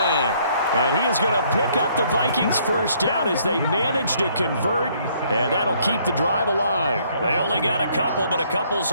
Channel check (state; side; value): inverted; both; correlation -0.65